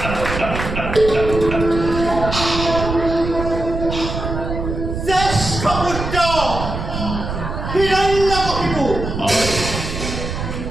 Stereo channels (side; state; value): right; noise; rumble, 5 dB below the sound